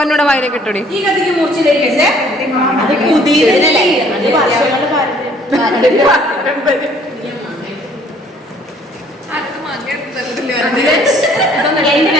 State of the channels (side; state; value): both; normal; correlation 0.59